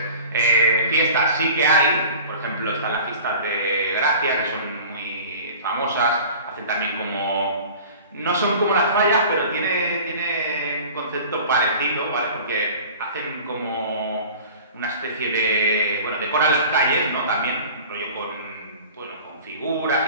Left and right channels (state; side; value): inverted; both; correlation -0.42